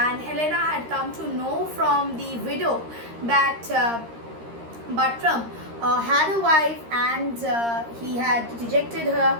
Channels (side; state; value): left; late; 13 ms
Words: Helena had come to know from the widow that Buttram had a wife, and he had rejected her